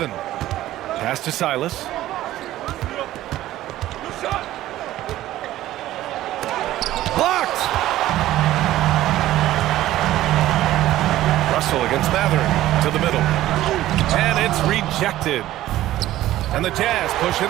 Pass to Silas. Blocked! Russell against Mathurin to the middle. And it's rejected. And the Jazz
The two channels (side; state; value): left; quieter; 14.6 dB